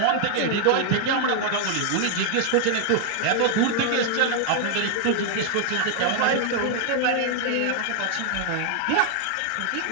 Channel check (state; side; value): different; both; correlation 0.00